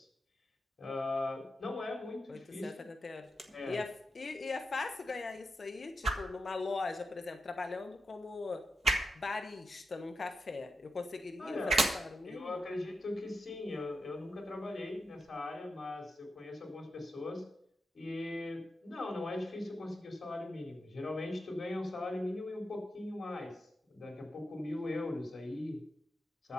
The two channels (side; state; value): both; normal; correlation 0.87